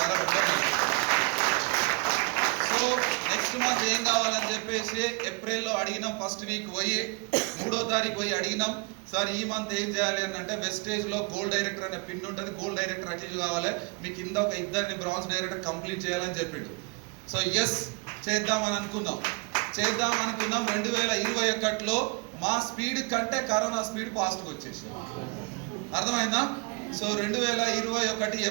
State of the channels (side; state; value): left; quieter; 31.2 dB